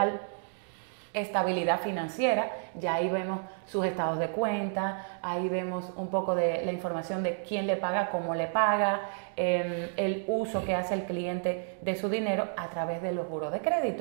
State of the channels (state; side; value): silent; left; digital silence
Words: estabilidad financiera. Ya ahí vemos sus estados de cuenta, ahí vemos un poco de la información de quién le paga, cómo le paga, el uso que hace el cliente de su dinero a través de los buros de